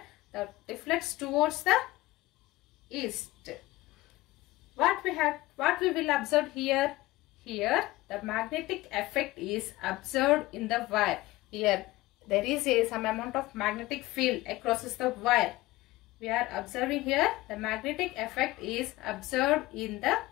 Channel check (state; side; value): quieter; right; 18.8 dB